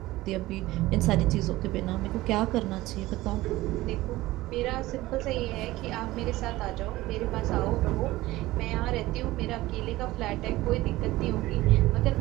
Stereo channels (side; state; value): left; quieter; 17.8 dB